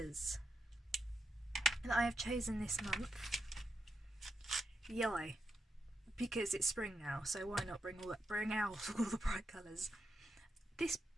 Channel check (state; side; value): normal; both; correlation 0.84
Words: that I have chosen this month: yellow, because it's spring now, so why not bring out all the bright colours. This